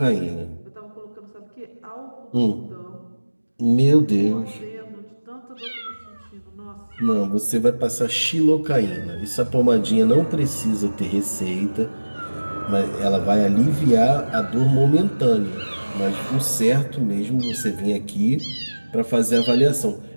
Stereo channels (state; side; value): inverted; both; correlation -1.00